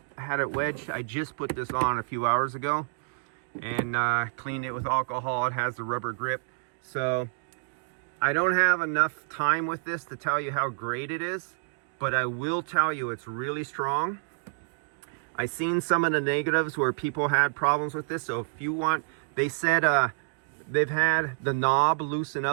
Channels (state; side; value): silent; left; digital silence